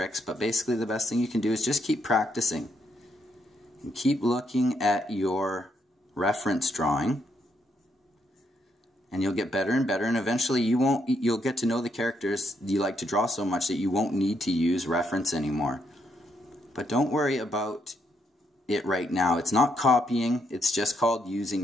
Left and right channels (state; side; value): normal; both; correlation 0.76